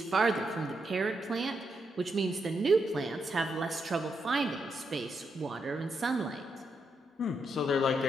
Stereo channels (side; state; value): both; normal; correlation 0.81